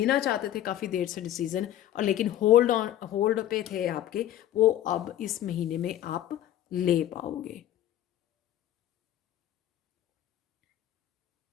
चाहते थे काफ़ी देर से डिसीजन, और लेकिन होल्ड पे थे आपके, वो अब इस महीने में आप ले पाओगे।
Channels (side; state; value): right; quieter; 12.4 dB